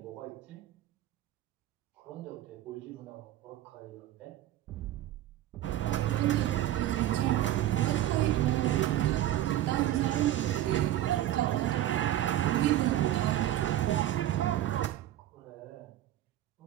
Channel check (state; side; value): quieter; left; 13.1 dB